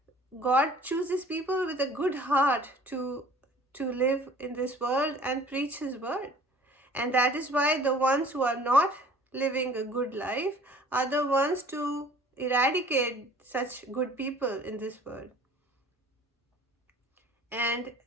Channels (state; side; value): normal; both; correlation 0.50